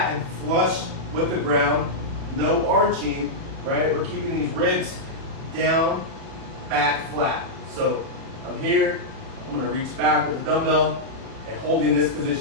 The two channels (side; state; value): left; late; 36 ms